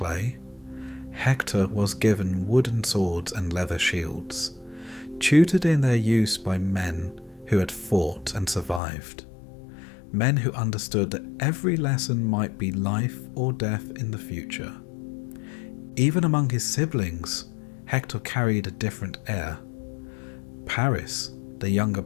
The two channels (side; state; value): right; drops out; at 8.8 s